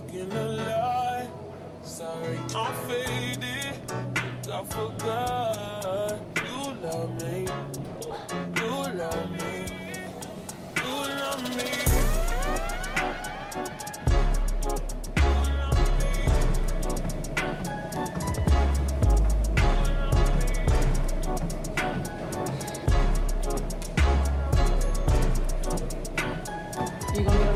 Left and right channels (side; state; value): both; identical; correlation 1.00